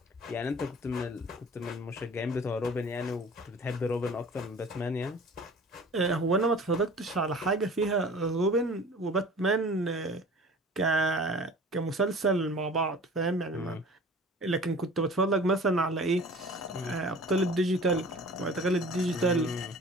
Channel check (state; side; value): normal; both; correlation 0.44